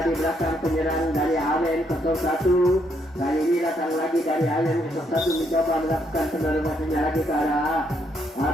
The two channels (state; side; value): normal; both; correlation 0.74